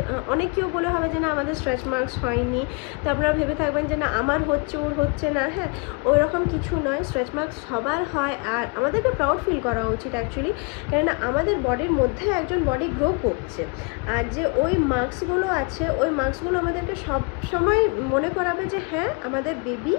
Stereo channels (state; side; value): quieter; right; 32.3 dB